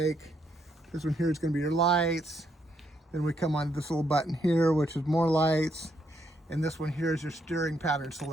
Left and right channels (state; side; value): normal; both; correlation 0.75